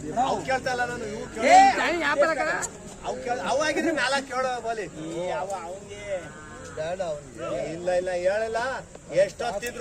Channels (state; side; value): identical; both; correlation 1.00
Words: ನೋಡಿ ಕೇಳ್ತಾ ಇಲ್ಲ ನಾನು ಅವಾಗಿದ್ರೆ ಮ್ಯಾಲ ಕೇಳೋ ಬೋಲಿ ಬೇಡ ಇಲ್ಲ ಇಲ್ಲ ಹೇಳಲ್ಲ